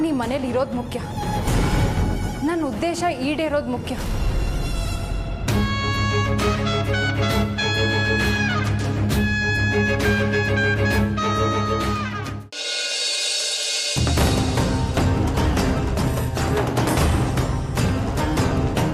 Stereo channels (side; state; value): both; identical; correlation 1.00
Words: ಈ ಮನೇಲಿ ಇರೋದು ಮುಖ್ಯ. ನನ್ನ ಉದ್ದೇಶ ಈಡೇರೋದು ಮುಖ್ಯ.